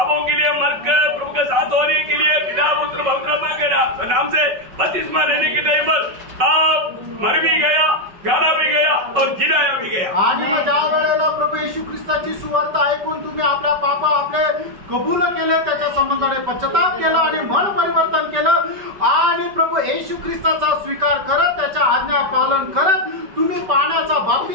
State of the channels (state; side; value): late; left; 5.3 ms